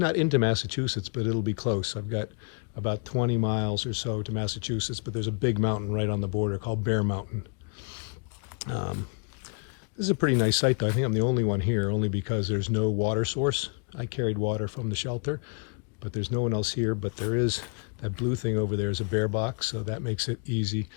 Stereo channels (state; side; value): quieter; right; 39.6 dB